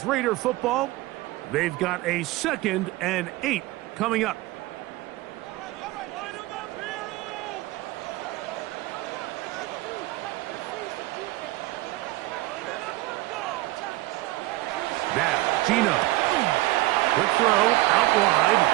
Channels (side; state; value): left; quieter; 18.9 dB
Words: Raider football. They've got a 2nd and 8 coming up. Now, Gino. Quick throw, out wide.